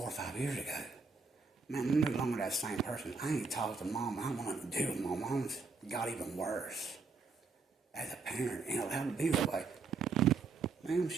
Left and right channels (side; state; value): left; quieter; 4.5 dB